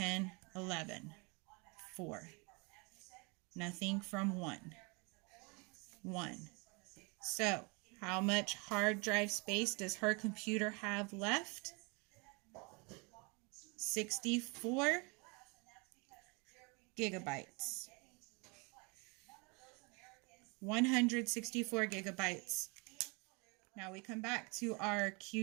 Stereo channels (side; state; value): left; quieter; 30.5 dB